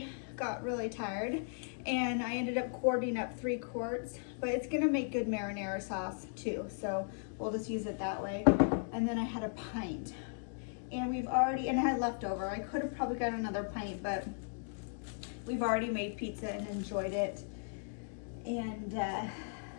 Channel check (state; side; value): silent; right; digital silence